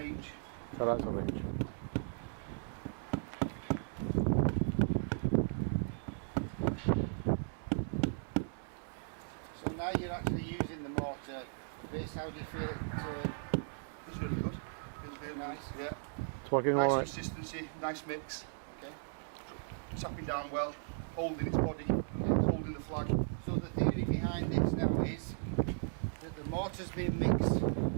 So that's a range. So now you're actually using the mortar. Chris, how do you feel it? It's really good. Really Nice. Yeah. It's working Nice alright. consistency, nice mix. Okay. Tapping down well, holding its body, holding the flag. So the theory behind this now is that the mortar's been mixed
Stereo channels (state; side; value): silent; left; digital silence